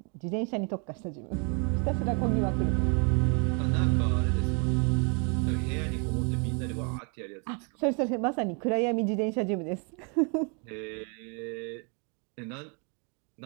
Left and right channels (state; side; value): quieter; left; 36.5 dB